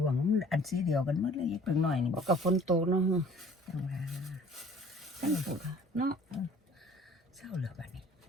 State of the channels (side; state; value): both; normal; correlation 0.51